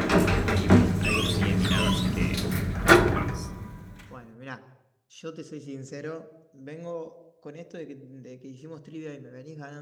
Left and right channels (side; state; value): both; identical; correlation 1.00